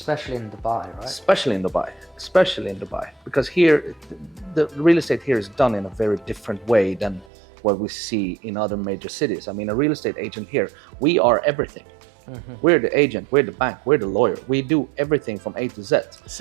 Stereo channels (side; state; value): left; drops out; at 7.2 s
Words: in Dubai, right? Especially in Dubai, because here the real estate here is done in a very different way than what we see in other major cities. I mean, a real estate agent here, we are everything. We're the agent, we're the bank, we're the lawyer. We do everything from A to Z.